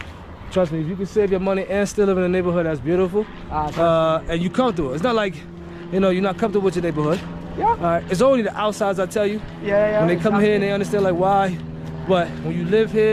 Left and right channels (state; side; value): identical; both; correlation 1.00